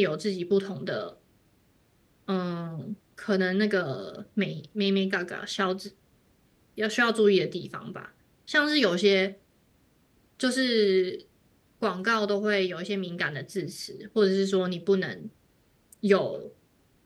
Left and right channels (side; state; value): both; identical; correlation 1.00